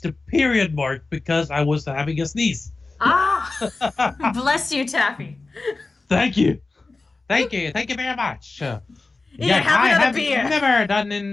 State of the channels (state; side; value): quieter; right; 3.6 dB